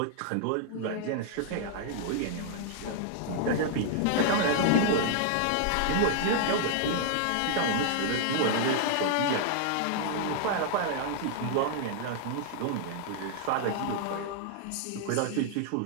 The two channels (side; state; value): both; different; correlation 0.00